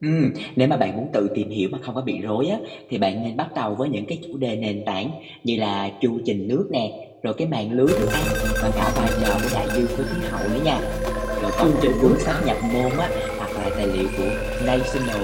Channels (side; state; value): both; identical; correlation 1.00